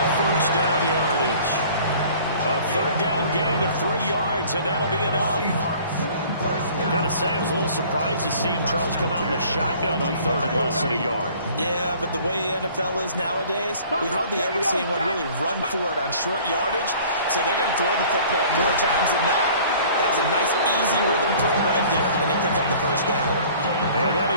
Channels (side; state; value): both; inverted; correlation -0.50